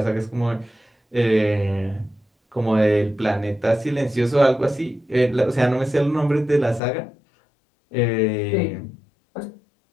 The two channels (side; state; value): right; drops out; at 6.8 s